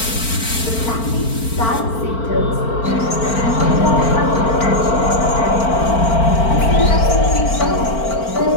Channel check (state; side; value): late; right; 4.4 ms